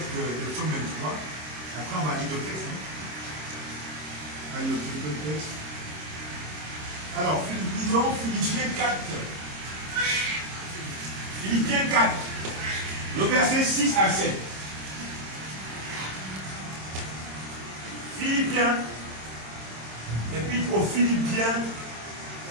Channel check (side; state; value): left; late; 26 ms